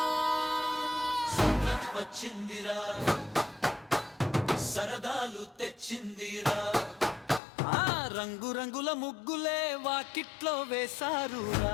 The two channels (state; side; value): drops out; right; at 7.4 s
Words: వచ్చిందిరా సరదాలు తెచ్చిందిరా ఆ రంగు రంగుల ముగ్గులే వాకిట్లో వేశారురా